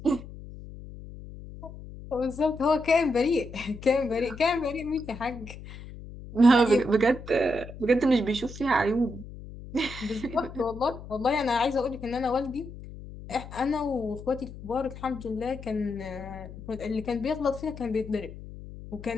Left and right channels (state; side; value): noise; left; hum, 14 dB below the sound